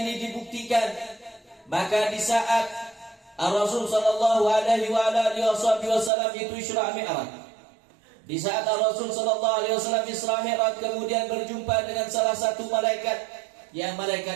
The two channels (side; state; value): left; drops out; at 6.1 s